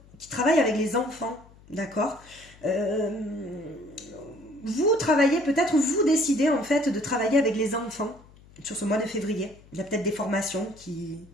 qui travaillent avec les enfants, d'accord? Vous travaillez peut-être, vous décidez en fait de travailler avec les enfants sur ce mois de février. Il y a peut-être des formations qui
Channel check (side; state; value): left; noise; hum, 25 dB below the sound